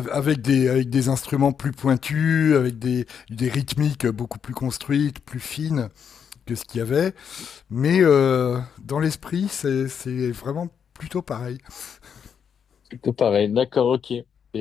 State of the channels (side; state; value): right; quieter; 7.4 dB